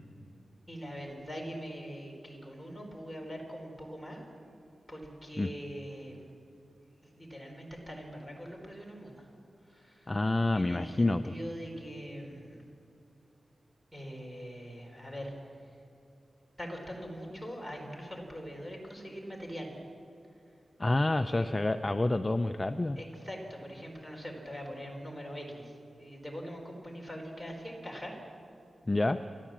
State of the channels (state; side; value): normal; both; correlation 0.98